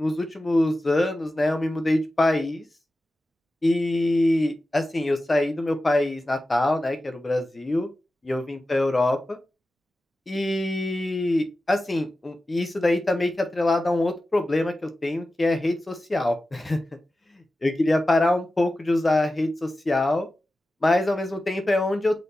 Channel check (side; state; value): both; normal; correlation 0.94